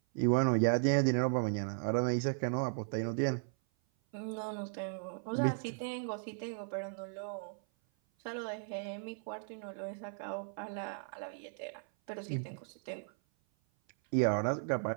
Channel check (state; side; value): silent; left; 54 dB below the other